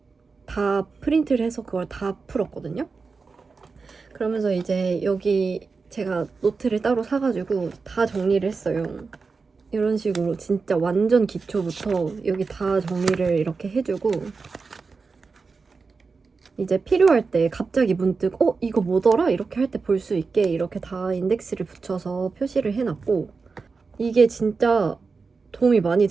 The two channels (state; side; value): quieter; left; 4.6 dB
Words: 다 프린트를 해서 그걸 다 풀었거든요. 그러면서 이제 여기 제가 노트를 따로 사가지고 다 정리를 했어요. 이런 식으로 진짜 완전 기초부터 여기 다 정리를 이렇게 해주고 이제 필요할 때 갑자기 문득 이거 뭐더라? 이렇게 할 때 볼 수 있게 이렇게 다 인덱스를 붙여서 표시를 해놨고 이게 진짜 도움이 많이